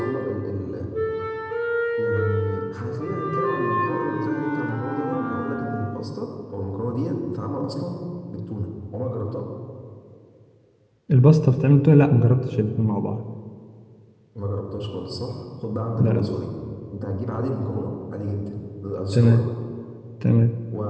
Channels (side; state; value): both; identical; correlation 1.00